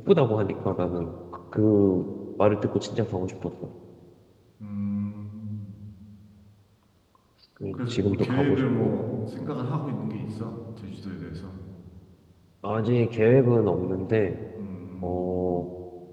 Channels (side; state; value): both; identical; correlation 1.00